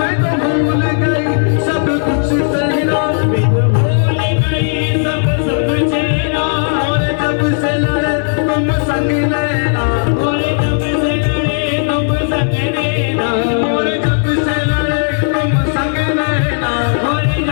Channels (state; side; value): silent; right; digital silence